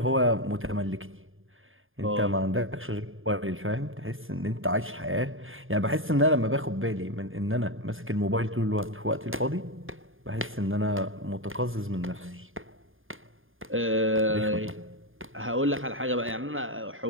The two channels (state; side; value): late; left; 0.59 ms